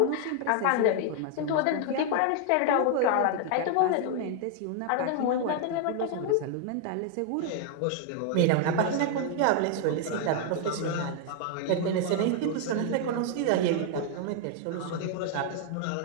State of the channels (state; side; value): different; both; correlation 0.00